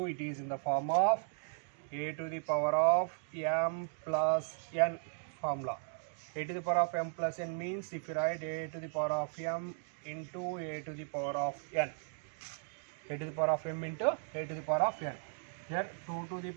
It is in the form of a to the power of m plus n formula. A to the power of m plus n means if you write a to the power of m into a to the power of n. A to the power of m into a to the power of n. Here 2 to the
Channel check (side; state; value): left; silent; digital silence